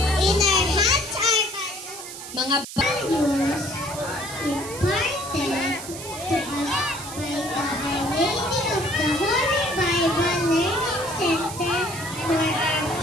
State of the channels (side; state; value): right; noise; hiss, 11 dB below the sound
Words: In our hearts are mga values imparted to us by the Our Lady of the Holy Bible Learning Center for our